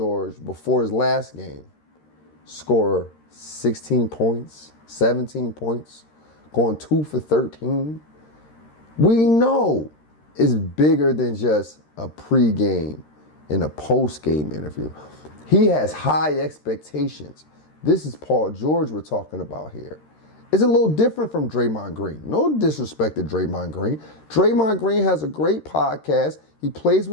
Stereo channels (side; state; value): right; late; 13 ms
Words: before his last game score 16 points, 17 points, going 2 for 13. We know it's bigger than just a pregame and a postgame interview. He has high expectations. This is Paul George we're talking about here. It's a little different from Draymond Green. No disrespect to Draymond Green. Draymond Green has a great podcast. He plays